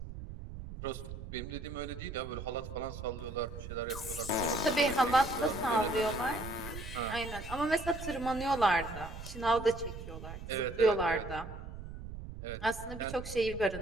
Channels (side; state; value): right; noise; rumble, 10 dB below the sound